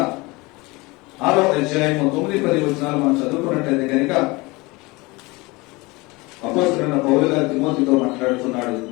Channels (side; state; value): right; quieter; 23.9 dB